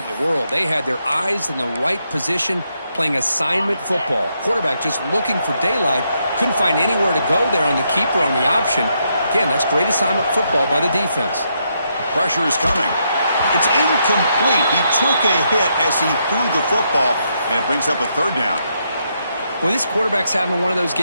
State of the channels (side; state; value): both; inverted; correlation -0.78